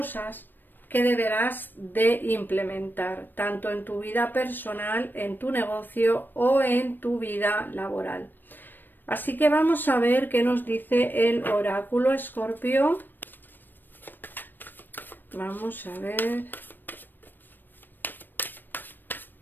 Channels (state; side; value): late; right; 0.093 ms